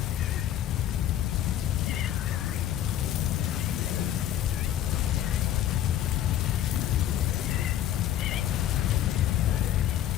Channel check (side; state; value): right; quieter; 11.4 dB